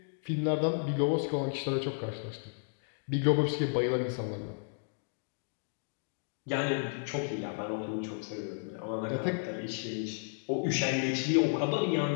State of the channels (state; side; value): silent; right; digital silence